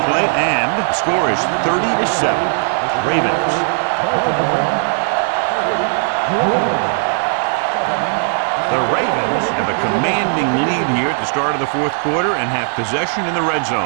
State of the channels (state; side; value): silent; left; 60 dB below the other